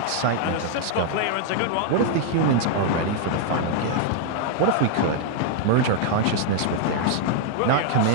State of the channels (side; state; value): both; different; correlation 0.00